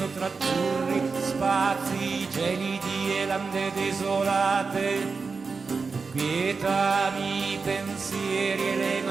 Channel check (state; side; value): quieter; left; 4.7 dB